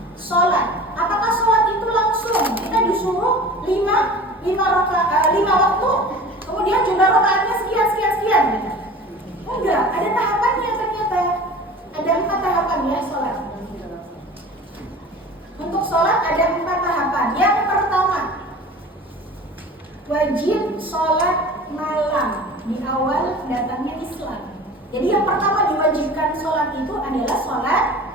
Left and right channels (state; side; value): normal; both; correlation 0.39